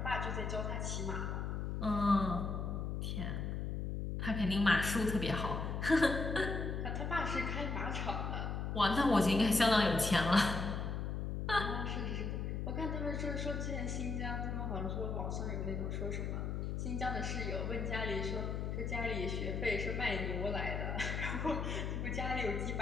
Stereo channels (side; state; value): left; noise; hum, 2 dB below the sound